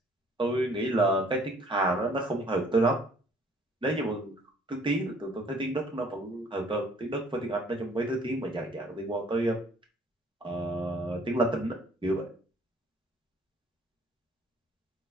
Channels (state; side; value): normal; both; correlation 0.57